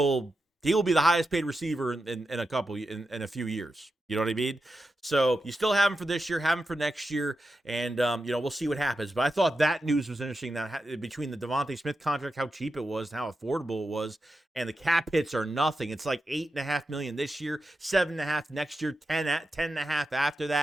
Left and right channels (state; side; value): normal; both; correlation 0.89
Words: He will be the highest paid receiver in a few years. You know what I mean? So you still have him for this year, have him for next year, and we'll see what happens. But I thought that news was interesting. That between the Devontae Smith contract, how cheap it was, and how affordable it was, and the cap hits are nothing. It's like $8.5 million this year, $7.5 million next year, $10.5 million after